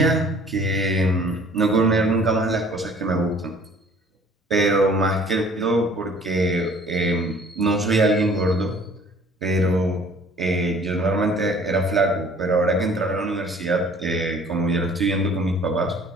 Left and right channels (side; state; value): both; normal; correlation 0.53